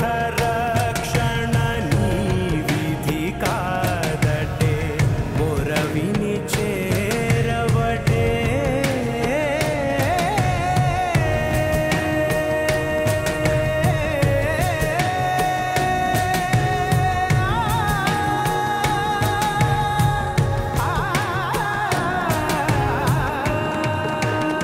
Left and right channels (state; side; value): identical; both; correlation 1.00